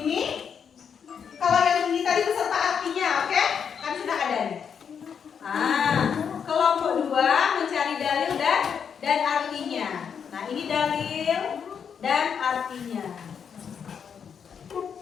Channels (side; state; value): right; quieter; 7.2 dB